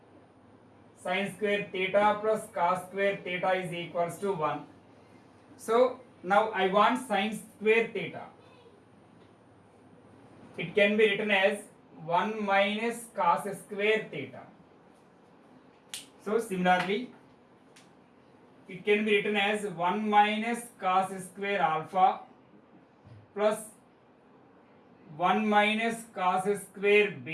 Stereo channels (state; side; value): identical; both; correlation 1.00